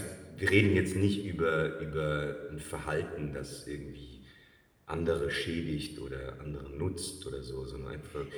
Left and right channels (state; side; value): identical; both; correlation 1.00